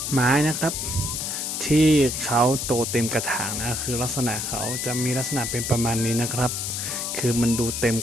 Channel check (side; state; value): left; noise; hiss, 3 dB below the sound